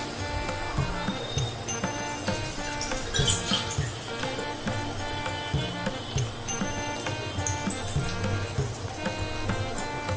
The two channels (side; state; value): both; identical; correlation 1.00